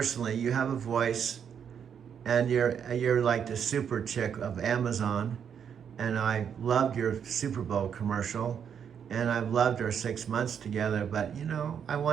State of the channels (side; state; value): left; quieter; 7.8 dB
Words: You have a voice, and you're like the super chick of Amazon. And I loved your Super Bowl commercial, and I've loved our 6 months together. But you know, I